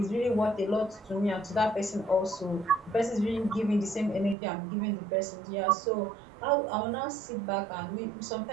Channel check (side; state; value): left; drops out; at 4.4 s